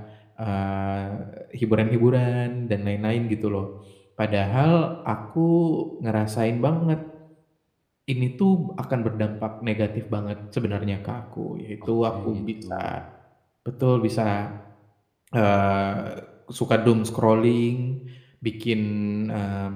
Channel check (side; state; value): both; identical; correlation 1.00